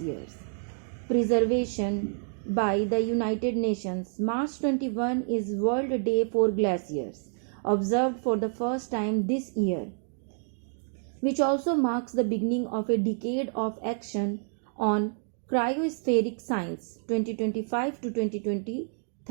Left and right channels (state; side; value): silent; left; 59 dB below the other